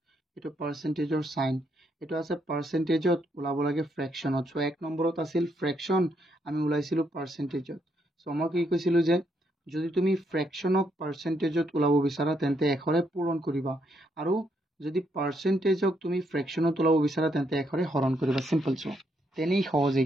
এটো পাৰ্সেন্টেজৰ সাইন এটো আছে পাৰ্সেন্টেজত ওলাব লাগে ফ্ৰেকশনত সো 1 নম্বৰত আছিল ফ্ৰেকশন আমি ওলাইছিলো পাৰ্সেন্টেজত সো মই কি কৈছিলো যে যদি তুমি ফ্ৰেকশনক পাৰ্সেন্টেজত ওলাব বিচাৰা তেন্তে 1 ৰে পূৰণ কৰিবা আৰু যদি পাৰ্সেন্টেজক তুমি ফ্ৰেকশনত ওলাব বিচাৰা তেন্তে 1 ৰে হৰণ কৰিবা সিম্পল সো তেনেই সহজ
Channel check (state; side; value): normal; both; correlation 0.76